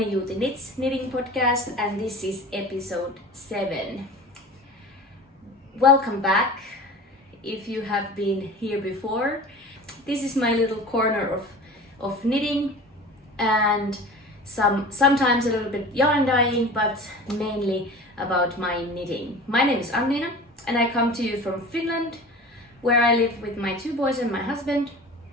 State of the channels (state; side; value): normal; both; correlation 0.38